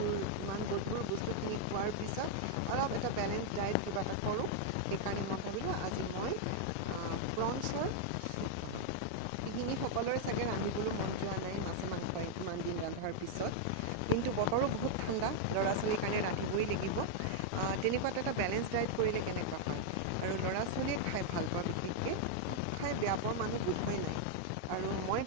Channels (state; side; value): different; both; correlation 0.00